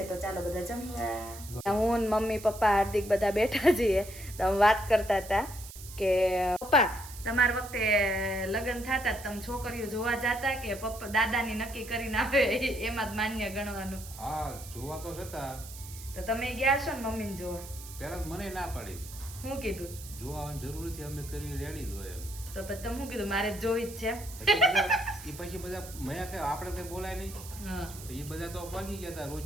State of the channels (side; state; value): right; noise; hiss, 14 dB below the sound